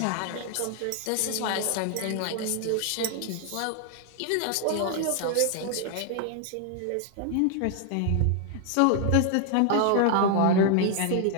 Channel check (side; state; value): both; different; correlation 0.00